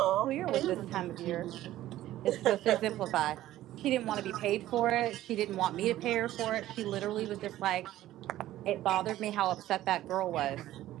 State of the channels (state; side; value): quieter; left; 14.3 dB